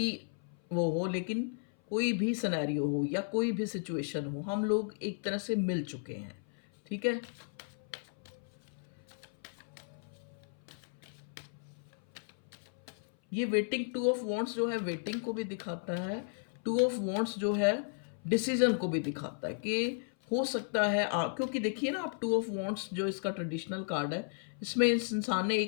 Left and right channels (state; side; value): silent; right; 55 dB below the other